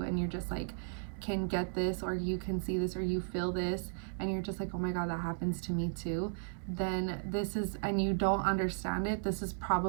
and you're just like can get this, or you can see this, or you feel this, and you're just like, oh my god, that happens to me too. Then this is, and you don't understand it, this is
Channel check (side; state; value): left; silent; 54 dB below the other